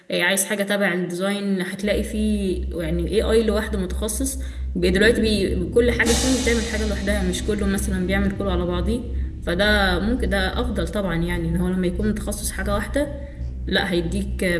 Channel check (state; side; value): identical; both; correlation 1.00